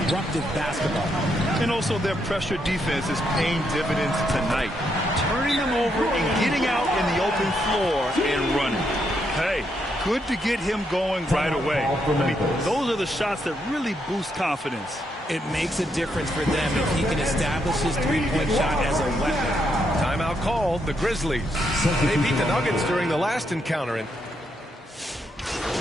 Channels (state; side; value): normal; both; correlation 0.78